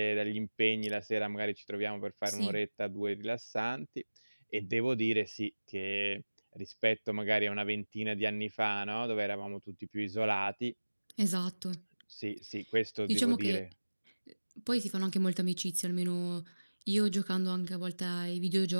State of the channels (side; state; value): both; inverted; correlation -1.00